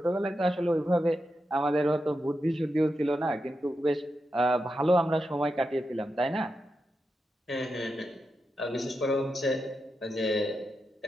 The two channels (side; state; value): both; normal; correlation 0.87